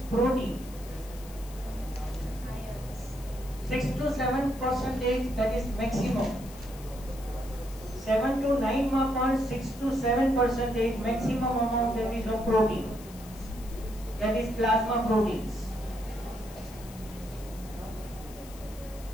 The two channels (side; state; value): left; noise; hiss, 19 dB below the sound